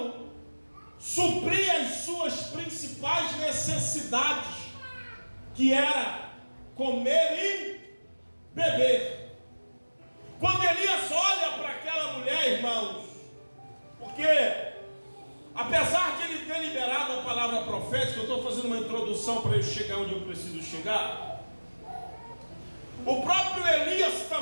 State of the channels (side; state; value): both; inverted; correlation -1.00